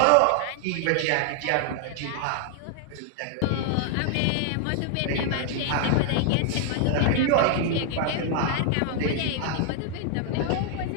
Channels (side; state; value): both; different; correlation 0.00